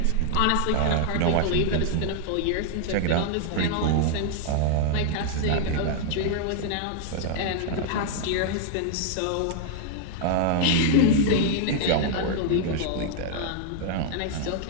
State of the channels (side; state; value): both; different; correlation 0.00